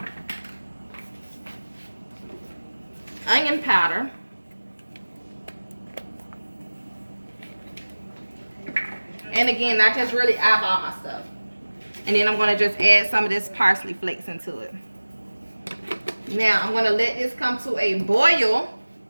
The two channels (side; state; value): both; inverted; correlation -1.00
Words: Onion powder. And again, I just really eyeball my stuff. And then I'm going to just add some of this parsley flakes into it. Now, I'm going to let this come to a boil.